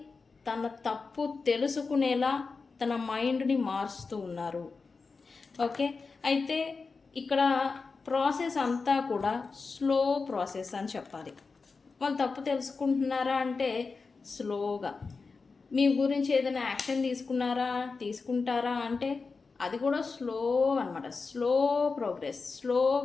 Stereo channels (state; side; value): quieter; right; 4.5 dB